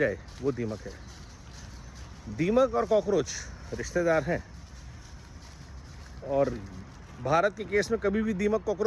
वो दीमक है। दीमक और कॉकरोच रिश्तेदार हैं, और भारत के केस में कभी भी दीमक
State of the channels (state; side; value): identical; both; correlation 1.00